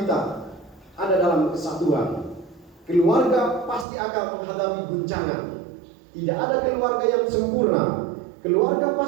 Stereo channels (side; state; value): left; drops out; at 3.9 s